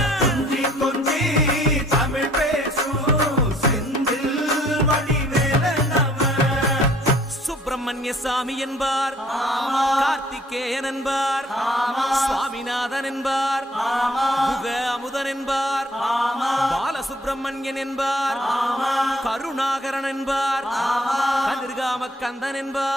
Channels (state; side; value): normal; both; correlation 0.59